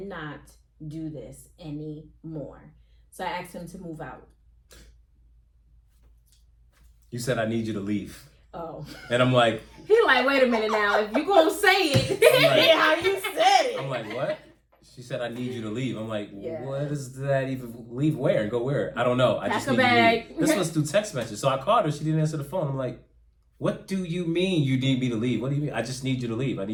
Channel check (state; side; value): identical; both; correlation 1.00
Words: do this anymore. So I asked him to move out. You said, I need you to leave. Oh. And I'm like... He like, wait a minute now. If you gonna say it. Like, how you said it. I'm like, what? She said, I need you to leave. I'm like, what does that even... Leave where and go where? I don't know. I just need you to leave. This was through text message. So I called her. She didn't answer the phone. I'm like, what do you mean you need me to leave? What do you mean? I just need you to leave. I